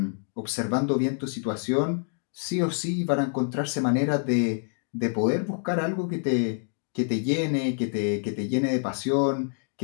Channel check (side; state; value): right; silent; 60 dB below the other